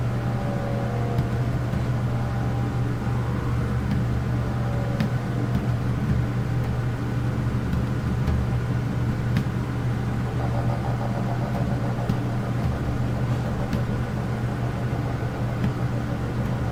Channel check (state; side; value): identical; both; correlation 1.00